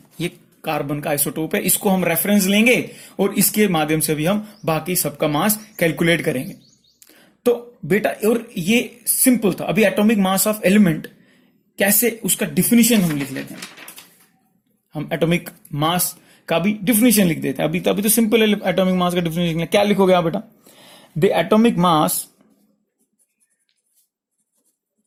ये कार्बन का आइसोटोप है, इसको हम रेफरेंस लेंगे और इसके माध्यम से भी हम बाकी सबका मास कैलकुलेट करेंगे। तो बेटा और ये सिंपल था। अभी एटॉमिक मास ऑफ एलिमेंट कैसे, उसका डिफिनीशन हम लिख लेते हैं, हम एटॉमिक मास का भी डिफिनीशन लिख देते हैं। अभी तो सिंपल है एटॉमिक मास का डिफिनीशन। क्या लिखोगे आप बेटा, the atomic mass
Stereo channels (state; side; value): identical; both; correlation 1.00